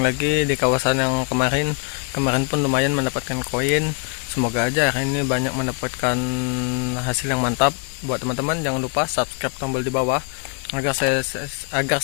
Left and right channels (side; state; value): right; quieter; 39.2 dB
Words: di kawasan yang kemarin. Kemarin pun lumayan mendapatkan koin. Semoga aja hari ini banyak mendapatkan hasil yang mantap. Buat teman-teman jangan lupa subscribe tombol di bawah agar